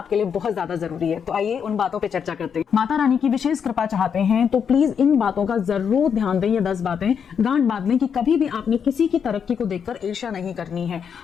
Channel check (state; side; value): quieter; right; 7.2 dB